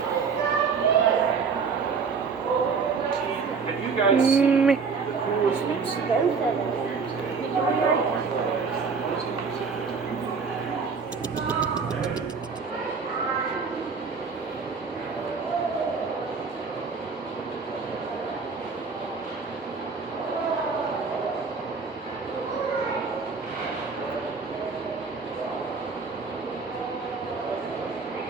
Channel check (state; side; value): quieter; left; 5.2 dB